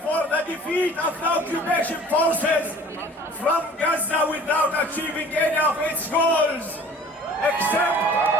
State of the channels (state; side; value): normal; both; correlation 0.47